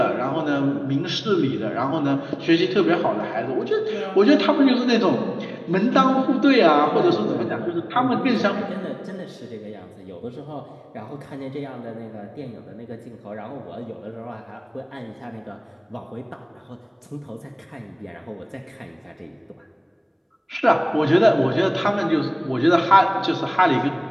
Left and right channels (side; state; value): both; identical; correlation 1.00